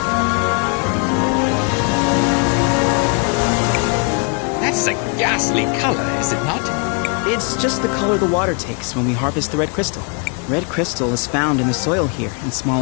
That's a ghastly color, is it not? It's just the color the water takes when we harvest the red crystal. Red crystal is found in the soil here in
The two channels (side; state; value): right; quieter; 36.5 dB